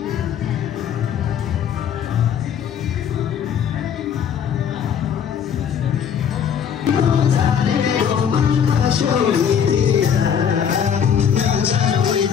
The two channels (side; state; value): right; quieter; 8.1 dB